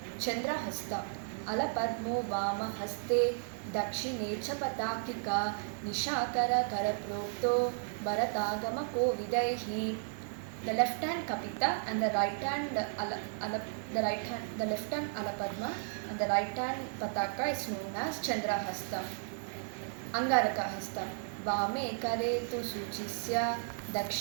Chandrahasta alapadmo vamahaste dakshine cha patakika nishakara karaprokto bharatagama kovidaihi. The left hand kapita and the right hand the left hand alapadma and the right hand pataka is known as Chandrahasta. Angarakahasta वामे करे तु सूचिस्य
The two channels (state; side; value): silent; left; 55 dB below the other